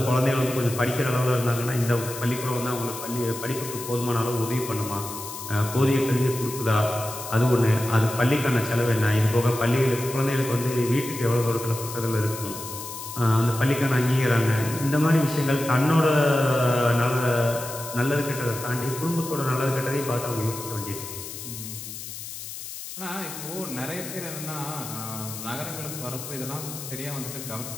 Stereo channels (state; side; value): noise; left; hiss, 10 dB below the sound